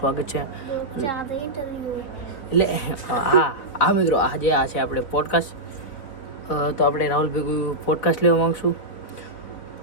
છે. એટલે હા મિત્રો, આજે આ છે આપણે પોડકાસ્ટ. તો આપણે રાહુલ ભેગું પોડકાસ્ટ લેવા માગશું.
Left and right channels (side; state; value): right; late; 4.0 ms